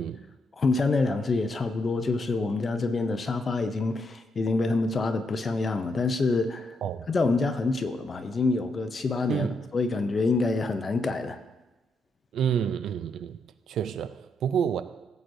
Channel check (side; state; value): both; normal; correlation 0.79